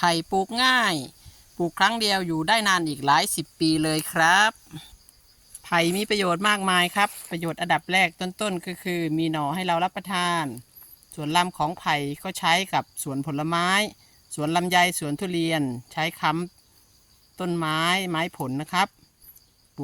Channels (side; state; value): both; identical; correlation 1.00